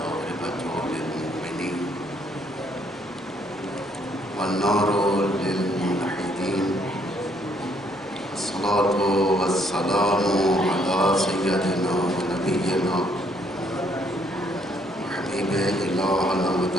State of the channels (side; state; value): both; normal; correlation 0.68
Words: للمؤمنين والنار للموحدين الصلاة والسلام على سيدنا ونبينا وحبيب إلهنا